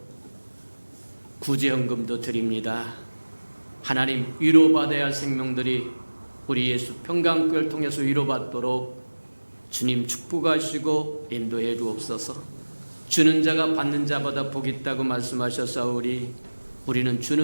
구제헌금도 드립니다. 하나님, 위로받아야 할 생명들이 우리 예수 평강교회를 통해서 위로받도록 주님 축복하시고 인도해 주옵소서. 주는 자가 받는 자보다 복이 있다고 말씀하셨사오니 우리는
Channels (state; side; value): inverted; both; correlation -1.00